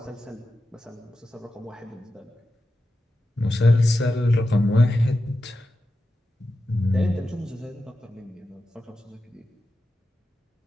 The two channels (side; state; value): both; normal; correlation 0.91